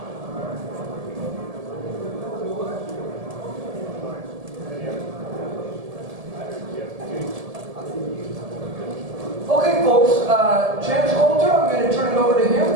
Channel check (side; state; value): left; late; 1.7 ms